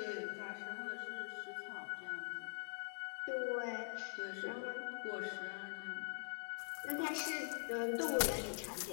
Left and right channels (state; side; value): silent; right; digital silence